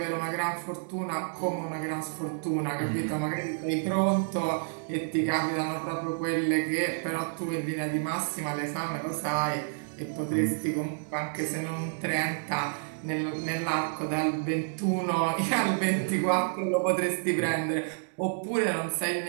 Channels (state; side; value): silent; left; digital silence